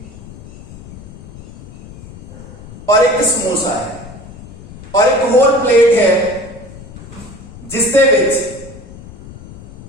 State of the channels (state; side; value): noise; left; rumble, 17 dB below the sound